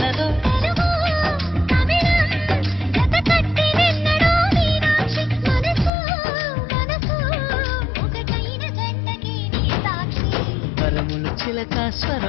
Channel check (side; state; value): right; drops out; at 5.9 s